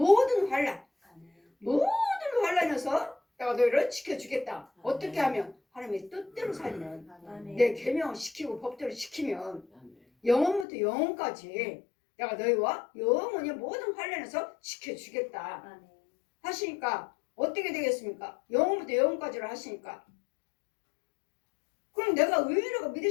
환난에서 내가 너희를 지켜주겠다. 어떻게 하면 하나님의 뜻대로 살면 내 계명을 지키고 법대로 지키면 영원부터 영원까지 내가 너희와 영원히 모든 환난에서 지켜주겠다 하시니까 어떻게 되겠습니까? 영원부터 영원까지를 하시니까 그럼 내가 의인이라고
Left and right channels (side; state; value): right; drops out; at 10.7 s